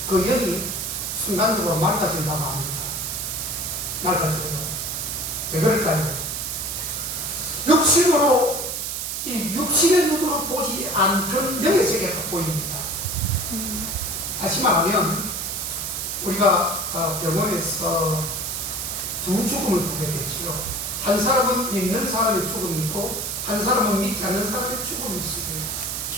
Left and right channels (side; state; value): right; noise; hiss, 3 dB below the sound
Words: 그 영이 순간적으로 맑아진다고 합니다. 맑아져요. 왜 그럴까요? 육신으로, 이 육신의 눈으로 보지 않던 영의 세계가 보입니다. 다시 말하면 우리가 병원에서 두 죽음을 보게 되죠. 한 사람은 믿는 사람의 죽음이 있고 한 사람은 믿지 않는 사람의 죽음이 있습니다.